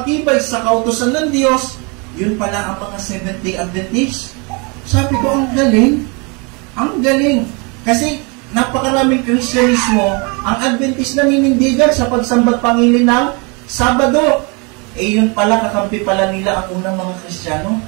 sa kautusan ng Diyos, yun pala ang mga Seventh-day Adventist. Sabi ko, ang galing. Ang galing. Kasi napakaraming Kristyanismo, ang Adventist naninindigan sa pagsambat pangilin ng Sabado. Yun pala, kakampi pala nila ang unang mga Kristiyano.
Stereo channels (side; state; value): left; quieter; 31.4 dB